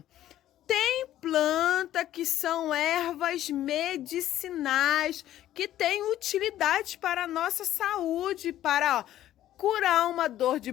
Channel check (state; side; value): quieter; right; 12.9 dB